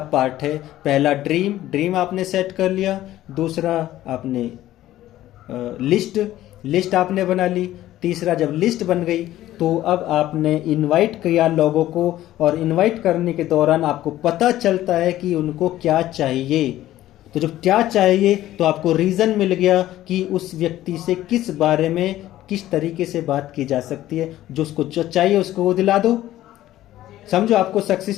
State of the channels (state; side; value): quieter; right; 14.2 dB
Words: पार्ट है। पहला ड्रीम आपने सेट कर लिया, दूसरा आपने लिस्ट आपने बना ली, तीसरा जब लिस्ट बन गई तो अब आपने इनवाइट किया लोगों को, और इनवाइट करने के दौरान आपको पता चलता है कि उनको क्या चाहिए। तो जब क्या चाहिए तो आपको रीज़न मिल गया कि उस व्यक्ति से किस बारे में किस तरीके से बात की जा सकती है। जो उसको जो चाहिए उसको वो दिला दो। समझो आपको